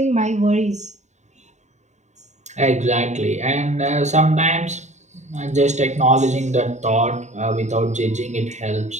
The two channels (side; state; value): left; late; 0.34 ms